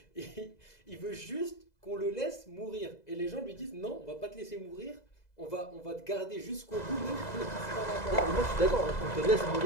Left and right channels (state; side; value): late; right; 2.0 ms